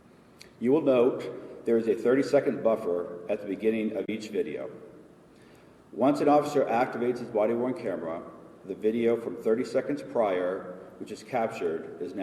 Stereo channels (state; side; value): identical; both; correlation 1.00